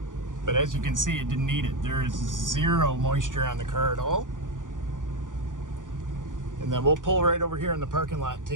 But as you can see, it didn't need it. There is zero moisture on the car at all. And then we'll pull right over here in the parking lot and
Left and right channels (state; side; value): late; left; 0.88 ms